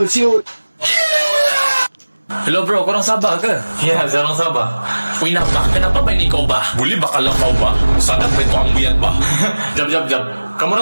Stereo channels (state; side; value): inverted; both; correlation -1.00